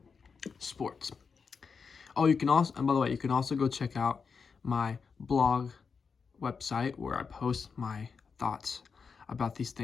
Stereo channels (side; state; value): right; quieter; 5.5 dB